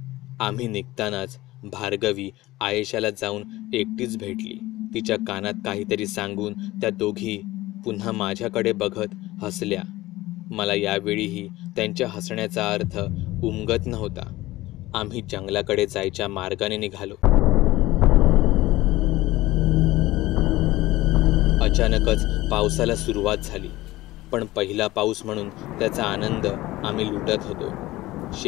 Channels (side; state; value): right; quieter; 18.0 dB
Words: आम्ही निघतानाच भार्गवी आयेशाला जाऊन एकटीच भेटली. तिच्या कानात काहीतरी सांगून त्या दोघी पुन्हा माझ्याकडे बघत हसल्या. मला यावेळीही त्यांच्या हसण्याचा अर्थ उमगत नव्हता. आम्ही जंगलाकडे जायच्या मार्गाने निघालो. अचानकच पावसाला सुरुवात झाली, पण पहिला पाऊस म्हणून त्याचा आनंद आम्ही लुटत होतो.